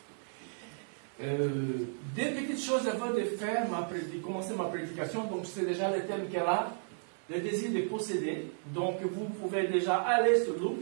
Des petites choses avant de faire, de commencer ma prédication. Donc, c'est déjà le thème qu'elle a, le désir de posséder. Donc, vous pouvez déjà aller sur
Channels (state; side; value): silent; left; digital silence